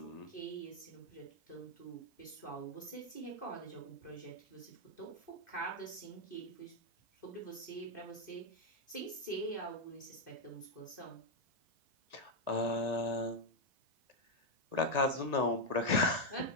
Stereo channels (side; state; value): left; late; 1.9 ms